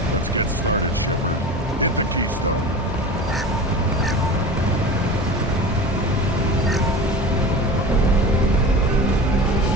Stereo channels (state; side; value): normal; both; correlation 0.32